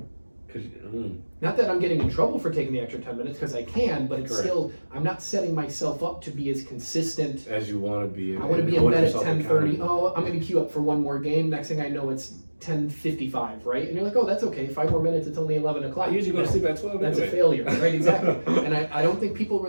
Not that I'm getting in trouble for taking the extra 10 minutes, because I can, but it's still, I'm not setting myself up to be as consistent as you want to be. I want to be in bed at 10:30. Oh, I'm going to queue up for one more game. Next thing I know, it's 10:55, right? And you're like, oh, that's okay. 5 more minutes. It's only 11 o'clock. I usually go to sleep at 12. That's a failure, right? Exactly. And I don't think people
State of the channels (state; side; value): inverted; both; correlation -1.00